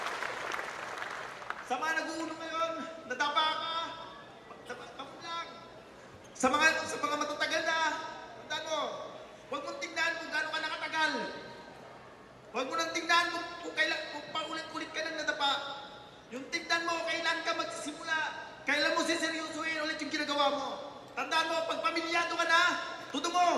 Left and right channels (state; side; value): identical; both; correlation 1.00